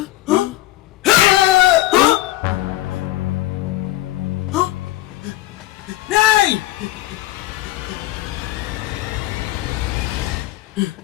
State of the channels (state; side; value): quieter; right; 17.0 dB